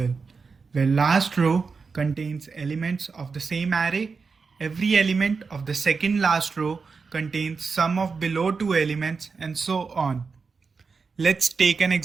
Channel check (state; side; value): quieter; left; 4.9 dB